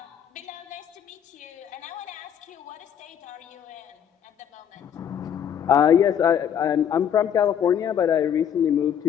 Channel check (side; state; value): right; quieter; 8.8 dB